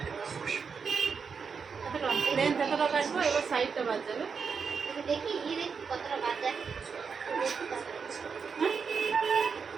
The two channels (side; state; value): left; quieter; 5.8 dB